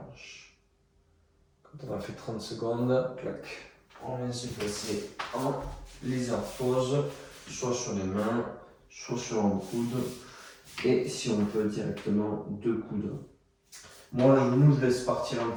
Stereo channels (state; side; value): identical; both; correlation 1.00